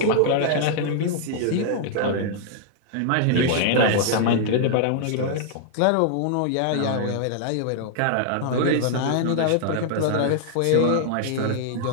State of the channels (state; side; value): different; both; correlation -0.01